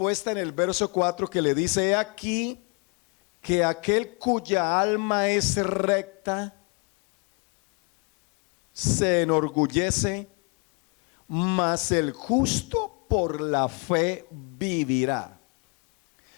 en el verso 4 que le dice: he aquí que aquel cuya alma es recta se enorgullece, mas el justo por la fe vivirá.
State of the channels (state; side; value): quieter; right; 34.2 dB